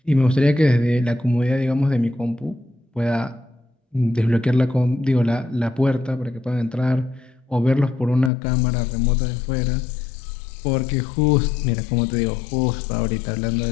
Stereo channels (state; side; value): drops out; right; at 8.3 s